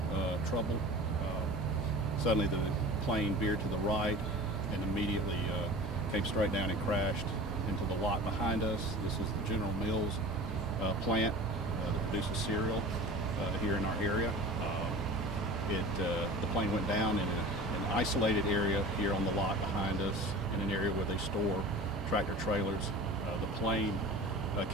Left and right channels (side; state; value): both; normal; correlation 0.37